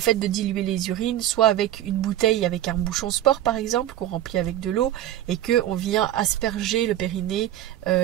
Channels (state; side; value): quieter; left; 12.7 dB